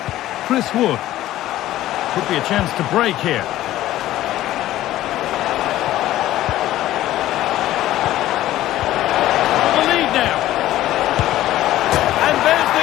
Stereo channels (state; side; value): quieter; right; 14.5 dB